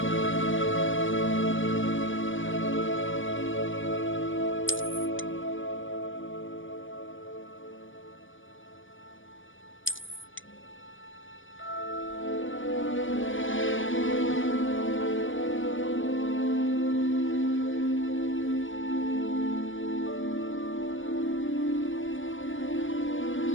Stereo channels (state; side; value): late; right; 0.57 ms